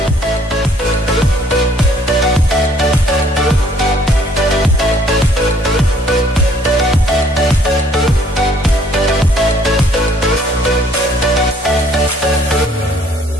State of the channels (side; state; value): both; normal; correlation 0.61